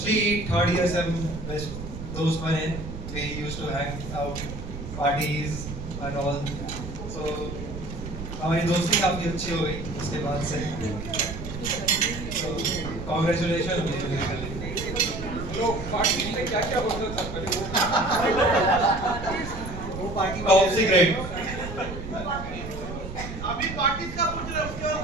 third year से हम best दोस्त बने। We used to hang out, parties and all. So हमारी दोस्ती काफी अच्छी हो गई उसके बाद से। So congratulations। तो पार्टी में क्या होता था? वो पार्टी टॉप सीक्रेट। अभी पार्टी का पूछ रहे हो, उसके बाद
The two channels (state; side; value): noise; right; rumble, 9 dB below the sound